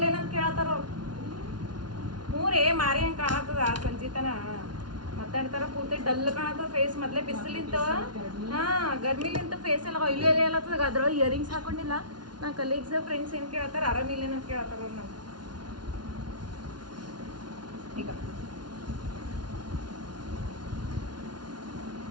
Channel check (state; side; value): late; left; 0.70 ms